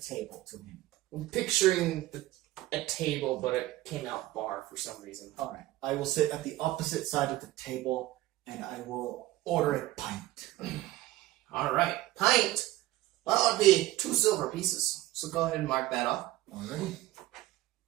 to him. I'm picturing a table, but it came out bar for some reason. All right. I will sit at the opposite side of the table and I will order a pint. All right, pint. Well, it'd be 2 silver pieces. So go ahead and mark that off. Already?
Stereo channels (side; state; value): left; quieter; 16.6 dB